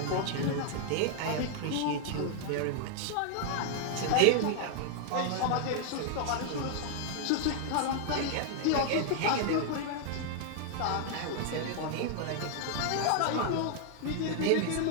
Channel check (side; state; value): both; different; correlation 0.00